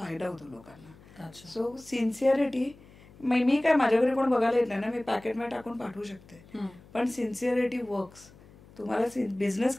होतो लोकांना. सो सिन्सिअरिटी, मी काय माझ्याकडे कोण बघायला येत नाही ना, मी पॅकेटमध्ये टाकून पाठवू शकते. पण सिन्सिअरिटी वर्क्स. तुम्हाला बिझनेस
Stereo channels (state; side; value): noise; left; hum, 24 dB below the sound